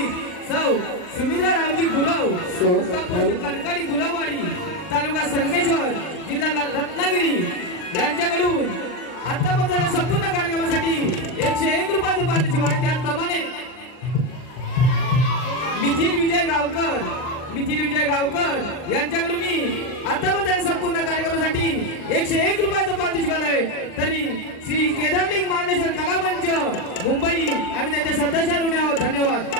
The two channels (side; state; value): right; late; 39 ms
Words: सौ सुमित्रा रावजी गुरव कणकणी गुरववाडी तालुका संगमेश्वर जिल्हा रत्नागिरी यांच्याकडून आतापर्यंत संपूर्ण कार्यक्रमासाठी 101 रुपयाचं पारितोषिक आहे। त्याचप्रमाणे मिथिल विजय गावकर यांच्याकडून आतापर्यंत संपूर्ण कार्यक्रमासाठी 101 रुपयाचं पारितोषिक आहे। तरी श्री केदारलिंग मार्लेश्वर कलामंच मुंबई आम्ही त्यांचे सदस्य ऋणी आहोत। धन्यवाद।